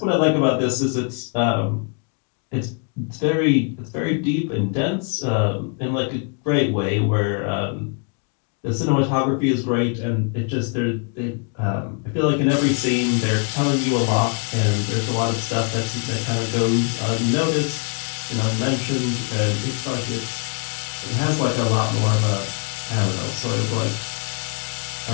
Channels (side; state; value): right; quieter; 39.1 dB